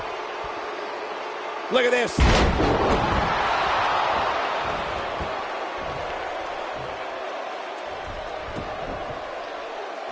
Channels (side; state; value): both; identical; correlation 1.00